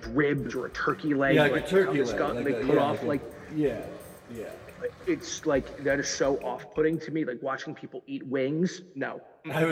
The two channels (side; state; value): both; identical; correlation 1.00